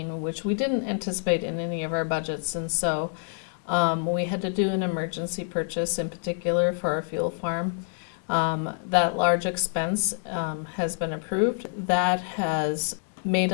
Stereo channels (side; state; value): right; silent; digital silence